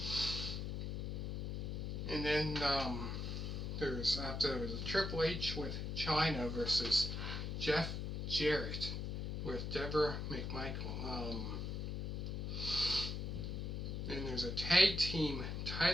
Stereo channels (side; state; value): left; noise; hum, 3 dB below the sound